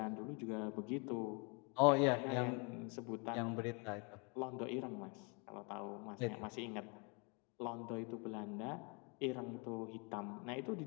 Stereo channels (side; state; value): right; quieter; 33.4 dB